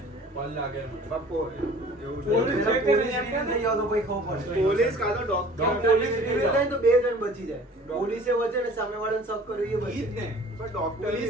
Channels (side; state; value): both; normal; correlation 0.48